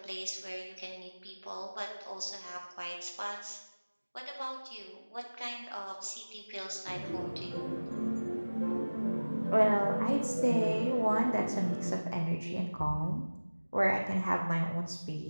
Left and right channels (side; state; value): both; inverted; correlation -1.00